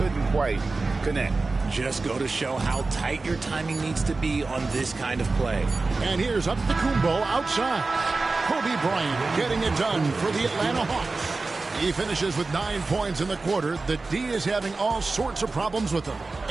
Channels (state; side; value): quieter; left; 3.7 dB